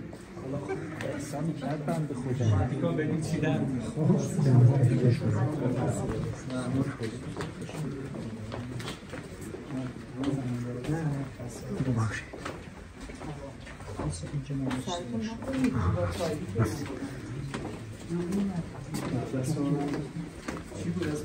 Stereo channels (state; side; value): identical; both; correlation 1.00